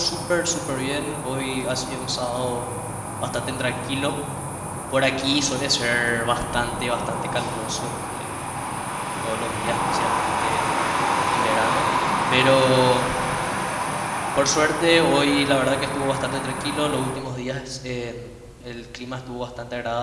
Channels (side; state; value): both; identical; correlation 1.00